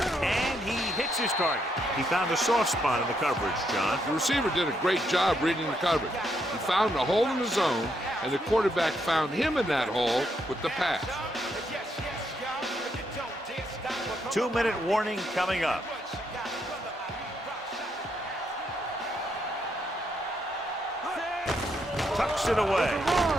and he hits his target. He found a soft spot in the coverage, John. The receiver did a great job reading the coverage. He found a hole in the zone, and the quarterback found him in that hole with the pass. 2-minute warning coming up. Tucks it away.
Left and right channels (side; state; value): both; normal; correlation 0.77